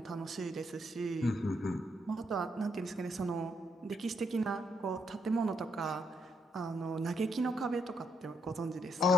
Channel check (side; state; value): both; normal; correlation 0.75